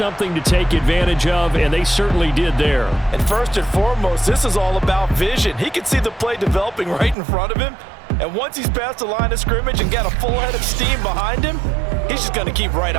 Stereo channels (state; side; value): drops out; left; at 7.2 s